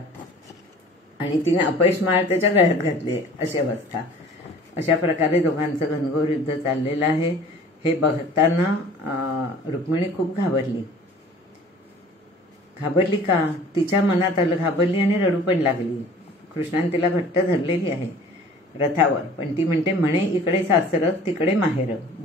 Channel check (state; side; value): normal; both; correlation 0.48